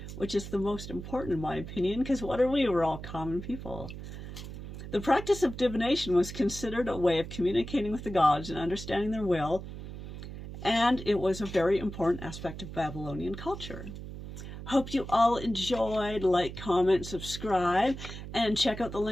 which is the most important in my opinion, because what are we? We're all common people. The practice of divination was considered a way of communicating with the gods and understanding their will, and it was a very important aspect of Babylonian culture. Hope you all enjoyed. Like, comment, subscribe, and check out the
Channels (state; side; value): noise; right; hum, 10 dB below the sound